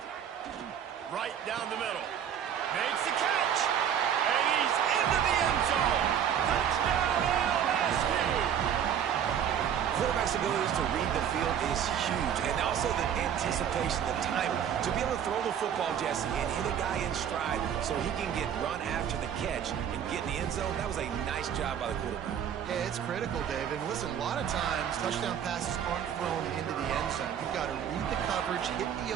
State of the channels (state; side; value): quieter; left; 8.9 dB